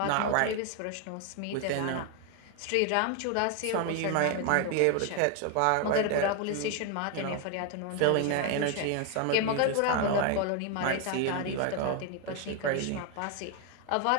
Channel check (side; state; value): both; different; correlation 0.01